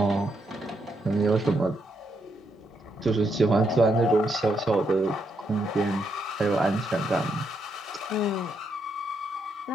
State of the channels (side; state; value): both; normal; correlation 0.78